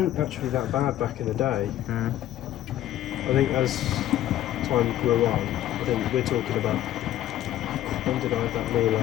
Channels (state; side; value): quieter; right; 12.9 dB